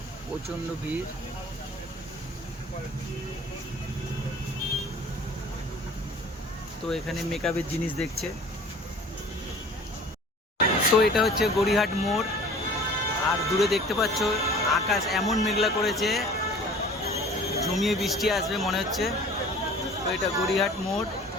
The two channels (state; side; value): normal; both; correlation 0.46